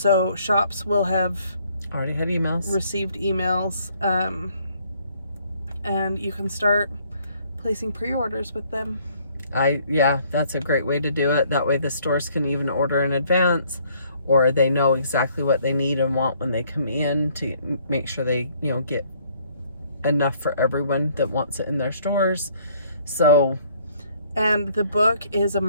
shops will have already had emails. Received emails. And you can start placing pre-orders with them. Yeah, that's a great way to do it. That way the stores can even order in advance, or they know exactly what they need and want when they come in to make sure they, get enough for everyone that wants it in their stores. So, and the book is a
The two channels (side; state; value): both; inverted; correlation -0.63